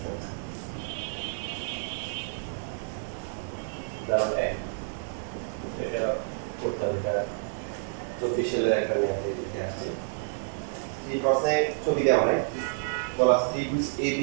উদাহরণ 1 এটা করতে হবে, এটা 24 সালের একটা ম্যাথ দিতে আসছে। এই প্রশ্নে ছবি দেওয়া হয়, বলা ত্রিভুজ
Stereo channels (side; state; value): left; silent; digital silence